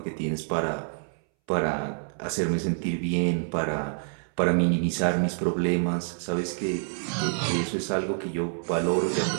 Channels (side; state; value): left; silent; 60 dB below the other